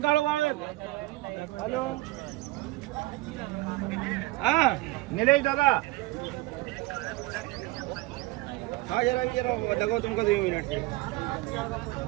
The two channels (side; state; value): left; quieter; 19.3 dB